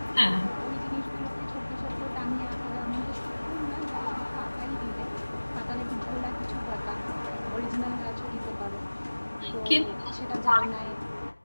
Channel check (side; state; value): both; inverted; correlation -1.00